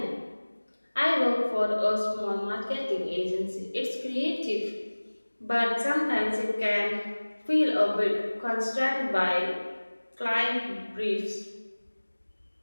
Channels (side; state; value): both; inverted; correlation -1.00